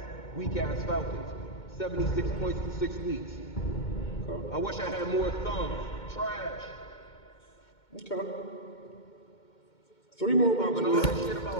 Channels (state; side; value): late; right; 2.2 ms